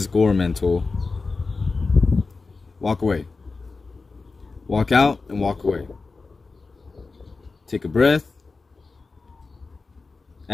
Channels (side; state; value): right; quieter; 4.0 dB